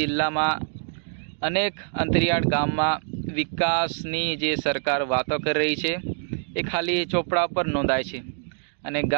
में अनेक अंतरियाळ गाम में विकासनी जे सरकार वातो कर रही है ए खाली ચોપડા पर नोंधाय छे अने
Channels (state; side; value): silent; left; digital silence